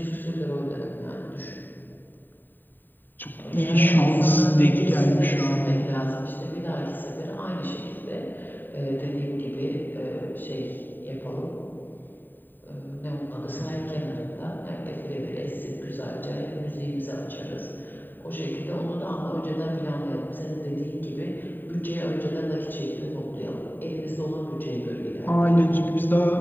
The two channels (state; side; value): late; right; 0.091 ms